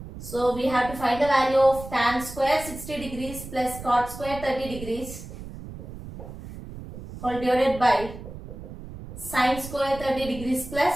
So we have to find the value of tan square 60 degrees plus cot square 30 degrees whole divided by sin square 30 degrees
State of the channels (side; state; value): right; noise; rumble, 12 dB below the sound